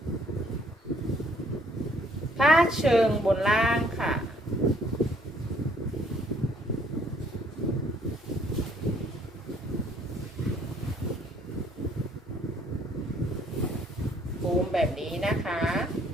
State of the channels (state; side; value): normal; both; correlation 0.63